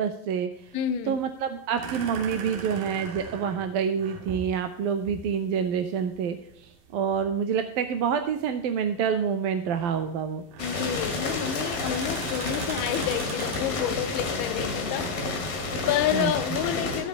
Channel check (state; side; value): late; left; 11 ms